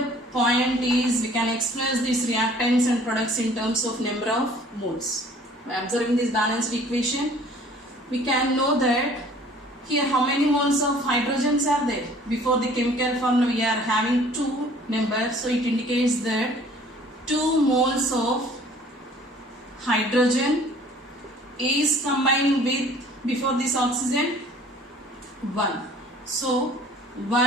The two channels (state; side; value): normal; both; correlation 0.52